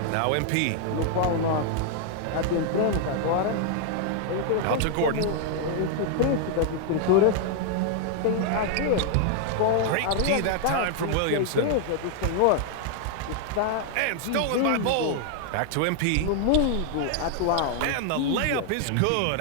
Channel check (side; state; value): both; different; correlation 0.00